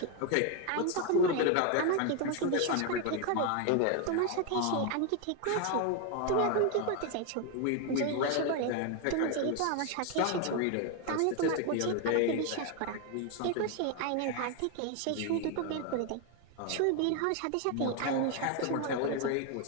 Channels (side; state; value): both; different; correlation 0.01